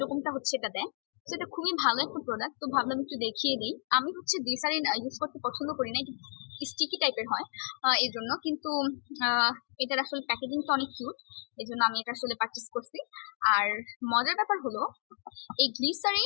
রকমটা হচ্ছে এটা দেয়। তো এটা খুবই ভালো একটা প্রোডাক্ট, তো ভাবলাম একটু দেখিয়ে দিই। আমি হচ্ছে গ্লিসারিন ইউজ করতে পছন্দ করি না, স্টিকি টাইপের হয় এই জন্য, কিন্তু এটার আসলে প্যাকেজিংটা অনেক কিউট, এই জন্য আমি এটা আসলে পারচেস করছি। আর মজার ব্যাপার হলো এই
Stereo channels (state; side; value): silent; right; 56 dB below the other